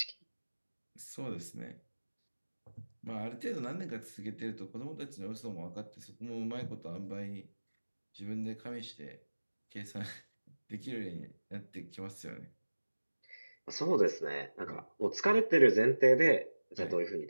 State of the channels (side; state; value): both; inverted; correlation -1.00